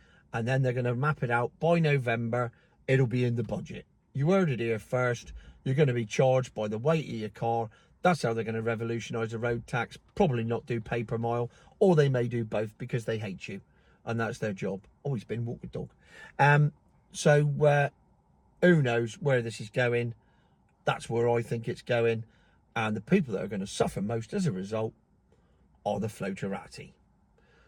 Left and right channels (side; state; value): both; identical; correlation 1.00